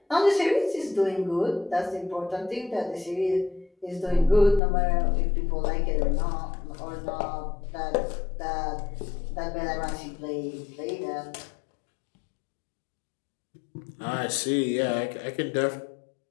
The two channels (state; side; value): drops out; right; at 4.6 s